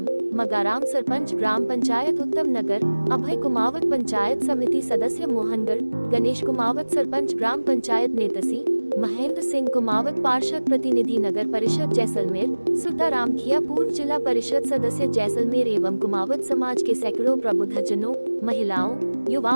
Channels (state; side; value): inverted; both; correlation -1.00